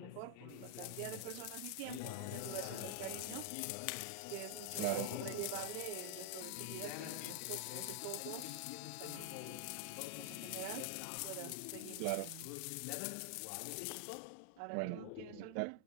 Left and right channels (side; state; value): both; different; correlation 0.00